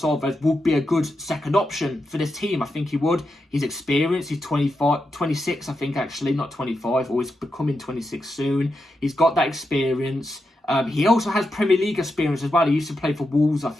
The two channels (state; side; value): normal; both; correlation 0.87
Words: would be a good second option for this team. I think he would. He's experienced. He's 26, I think, actually, not 25, or he's becoming 26 soon. He's got that experience. He also has Premier League experience as well. He used to play for Wolves, I